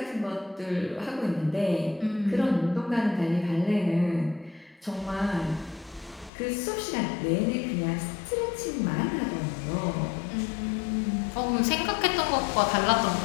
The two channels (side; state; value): right; drops out; at 6.3 s